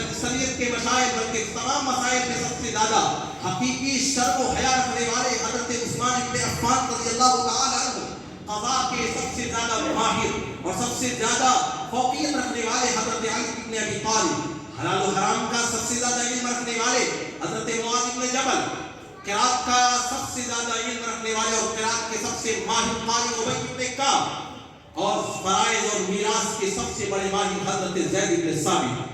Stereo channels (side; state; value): both; identical; correlation 1.00